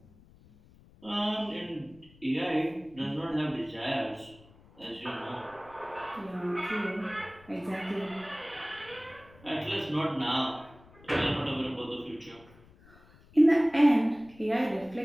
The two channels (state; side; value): noise; left; rumble, 25 dB below the sound